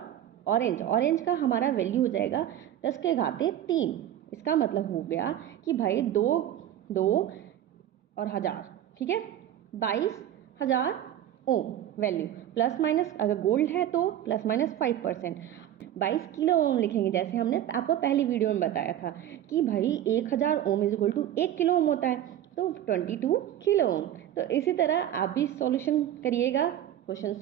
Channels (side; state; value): left; quieter; 11.5 dB